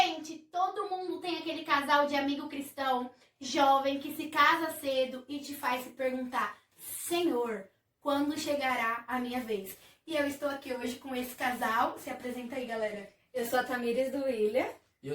todo mundo tem aquele casal de amigo cristão, jovem, que se casa cedo e te faz se perguntar: Senhor, quando chegará a minha vez? E eu estou aqui hoje com esse casal. Se apresenta aí, galera. Eu sou a Tamires do William. E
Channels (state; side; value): identical; both; correlation 1.00